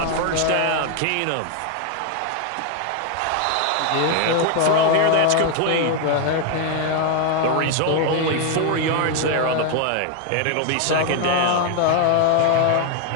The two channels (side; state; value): both; different; correlation 0.01